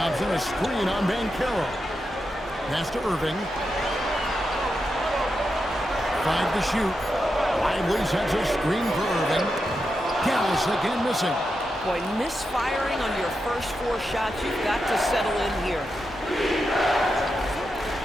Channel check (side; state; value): both; normal; correlation 0.87